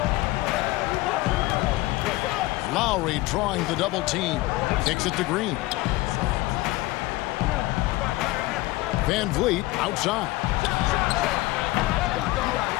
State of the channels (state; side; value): quieter; right; 19.6 dB